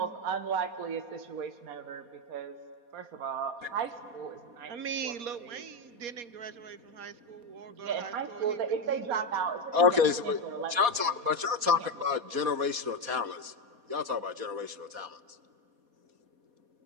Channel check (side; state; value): left; late; 4.2 ms